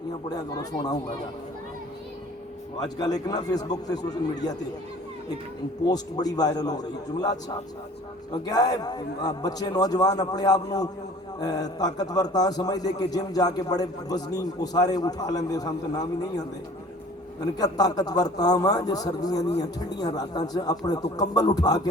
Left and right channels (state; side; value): normal; both; correlation 0.48